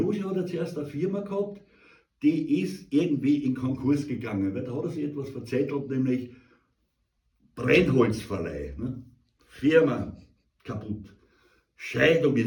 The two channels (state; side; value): identical; both; correlation 1.00